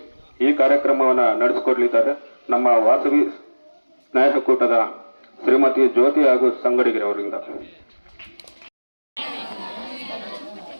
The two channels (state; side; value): inverted; both; correlation -1.00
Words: ಈ ಕಾರ್ಯಕ್ರಮವನ್ನ ನಡೆಸಿಕೊಡ್ಲಿದ್ದಾರೆ ನಮ್ಮ ವಾಸವಿ ಸ್ನೇಹ ಕೂಟದ ಶ್ರೀಮತಿ ಜ್ಯೋತಿ ಹಾಗೂ ಸಂಗಡಿಗರ ಅವರಿಂದ.